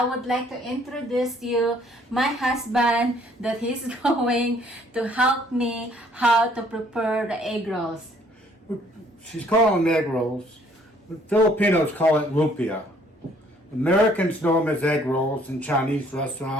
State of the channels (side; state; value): both; normal; correlation 0.62